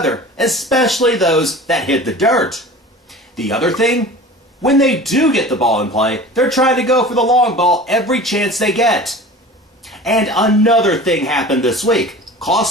especially those that hit the dirt. The other thing? When they do get the ball in play, they're trying to go for the long ball every chance they get. And another thing happened this week.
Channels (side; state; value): both; normal; correlation 0.38